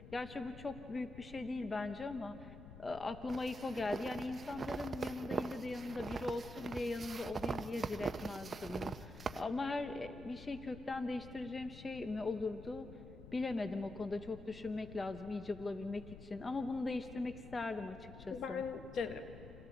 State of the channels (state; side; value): noise; left; rumble, 14 dB below the sound